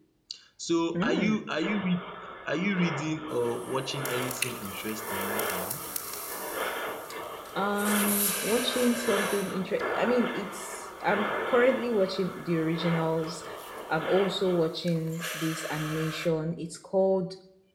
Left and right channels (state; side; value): identical; both; correlation 1.00